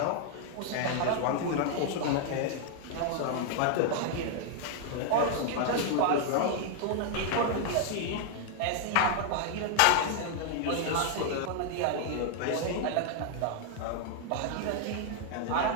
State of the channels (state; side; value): different; both; correlation 0.00